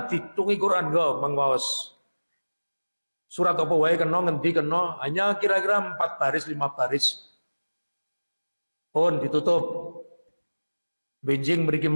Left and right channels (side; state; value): both; inverted; correlation -1.00